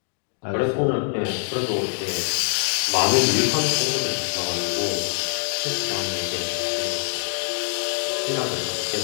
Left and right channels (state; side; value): silent; right; 63 dB below the other